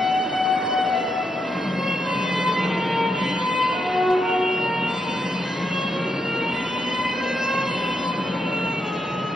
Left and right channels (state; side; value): normal; both; correlation 0.82